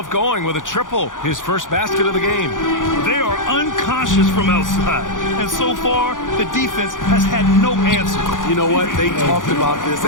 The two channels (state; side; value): late; right; 0.88 ms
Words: going with a triple. His first basket of the game. They are unconscious from outside. And so far, the defense has had no answer. You know what? They talked about this